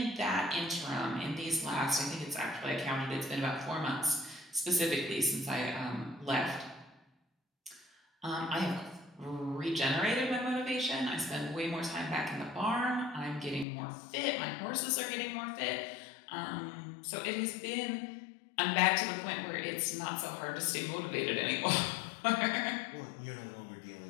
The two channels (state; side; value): drops out; right; at 13.7 s